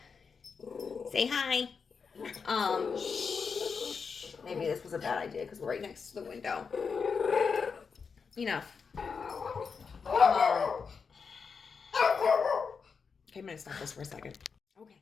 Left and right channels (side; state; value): right; quieter; 5.6 dB